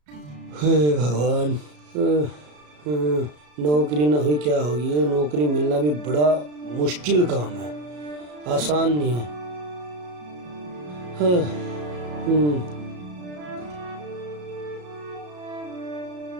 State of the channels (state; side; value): late; left; 34 ms